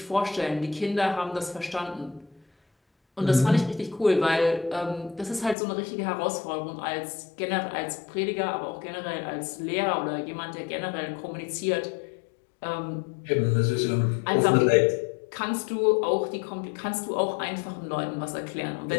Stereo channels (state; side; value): drops out; right; at 5.6 s